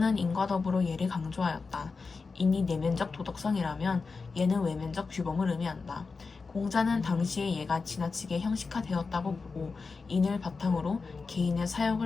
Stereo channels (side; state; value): right; quieter; 4.5 dB